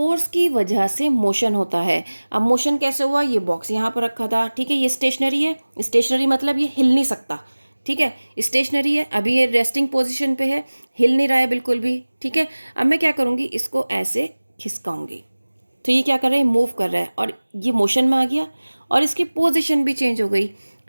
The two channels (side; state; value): both; inverted; correlation -1.00